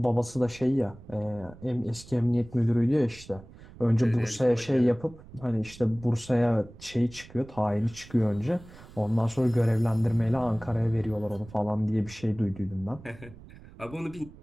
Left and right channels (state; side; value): noise; right; rumble, 19 dB below the sound